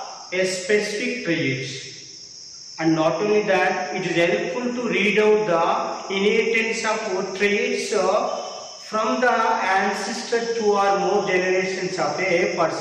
specific traits. And not only that, it is helpful to read out the inheritance of traits from the ancestor 2 or more generations of a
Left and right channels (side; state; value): both; identical; correlation 1.00